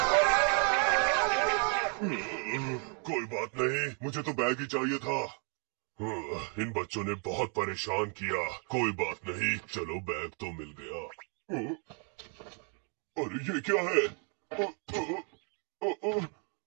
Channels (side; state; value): left; quieter; 39.9 dB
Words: कोई बात नहीं, मुझे तो बैग ही चाहिए था। इन बच्चों ने बहुत परेशान किया। कोई बात नहीं, चलो बैग तो मिल गया। अरे ये क्या है?